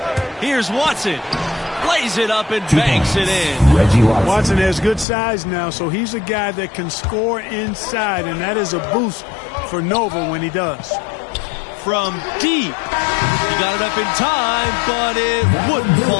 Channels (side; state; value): right; drops out; at 5.1 s